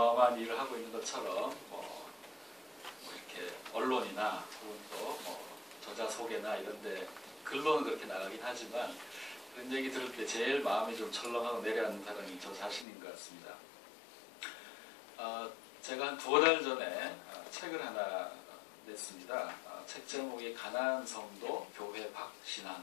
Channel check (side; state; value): right; drops out; at 12.9 s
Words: 일을 하고 있는 것처럼 이렇게 언론이나 혹은 또 저자 소개나 이런 데 글로는 그렇게 나가긴 하지만 그런 얘기 들을 때 제일 마음이 좀 철렁하고 내려앉는 사람이 저 자신인 것 같습니다. 제가 한 2달 전에 책을 하나 냈습니다. 책 제목이 가나안 성도 교회